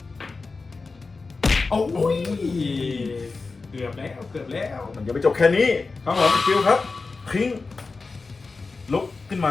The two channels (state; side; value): quieter; right; 4.1 dB